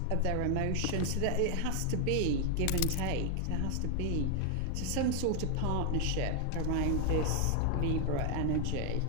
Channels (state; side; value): different; both; correlation 0.00